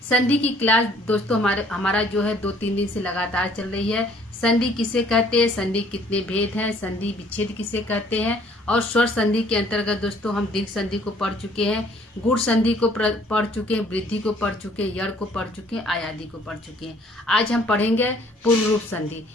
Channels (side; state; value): both; normal; correlation 0.59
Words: संधि की क्लास दोस्तों हमारा जो है 2-3 दिन से लगातार चल रही है। संधि किसे कहते हैं, संधि कितने भेद हैं, संधि विच्छेद किसे कहते हैं, और स्वर संधि के अंतर्गत दोस्तों हम दीर्घ संधि को पढ़ चुके हैं, गुण संधि को पढ़ चुके हैं, वृद्धि को पढ़ चुके हैं, यड़ को पढ़ चुके हैं, आयादी को पढ़ चुके हैं। आज हम पढ़ेंगे पूर्व रूप संधि।